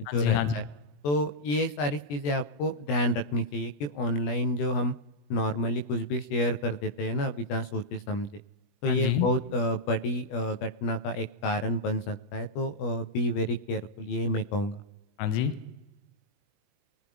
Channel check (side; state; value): right; late; 21 ms